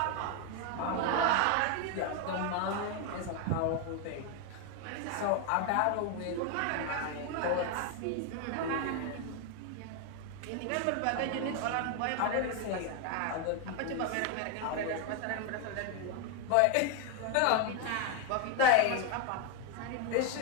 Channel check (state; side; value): different; both; correlation 0.01